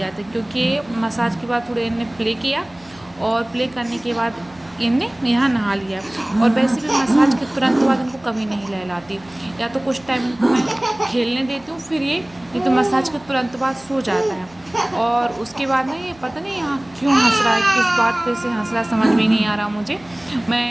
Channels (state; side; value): noise; right; hum, 27 dB below the sound